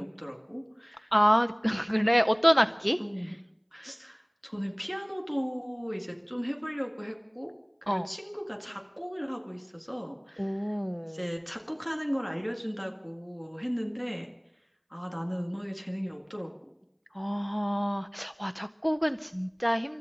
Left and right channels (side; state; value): both; identical; correlation 1.00